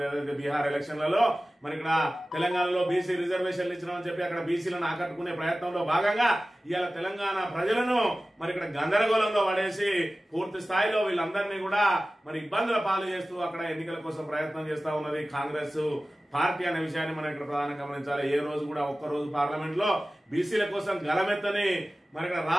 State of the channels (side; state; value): both; normal; correlation 0.96